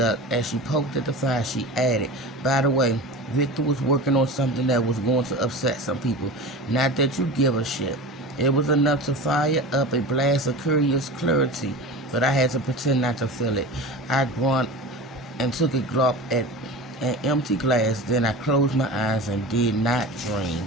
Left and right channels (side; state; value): both; normal; correlation 0.31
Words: As she poked at the fire, she added, by the way, Victor was working on something that was going to upset some people. Not that you give a shit. It was enough to fire up a blast of curious clarity, but I had to pretend not to feel it. I grunted and took a gulp at an empty glass. Then I closed my eyes and did not